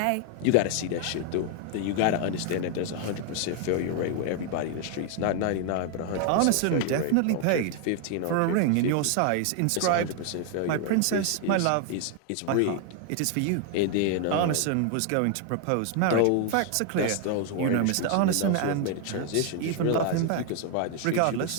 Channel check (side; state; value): both; different; correlation 0.00